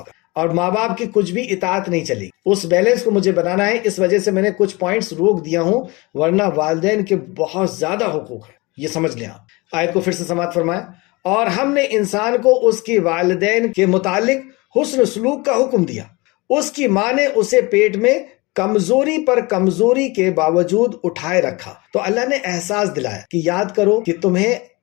کا، اور ماں باپ کی کچھ بھی اطاعت نہیں چلے گی۔ اس بیلنس کو مجھے بنانا ہے، اس وجہ سے میں نے کچھ پوائنٹس روک دیا ہوں، ورنہ والدین کے بہت زیادہ حقوق ہیں، یہ سمجھ لیں آپ۔ آیت کو پھر سے سماعت فرمائیں، اور ہم نے انسان کو اس کی والدین کے متعلق حسن سلوک کا حکم دیا، اس کی ماں نے اسے پیٹ میں کمزوری پر کمزوری کے باوجود اٹھائے رکھا، تو اللہ نے احساس دلایا کہ یاد کرو کہ تمہیں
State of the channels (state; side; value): quieter; right; 24.7 dB